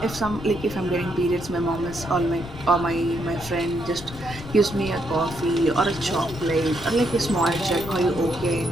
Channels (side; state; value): left; noise; rumble, 13 dB below the sound